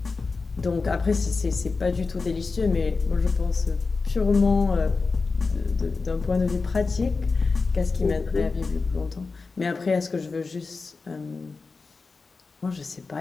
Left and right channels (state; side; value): quieter; right; 4.2 dB